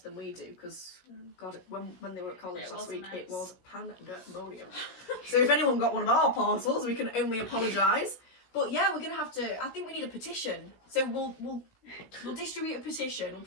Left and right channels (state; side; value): late; right; 16 ms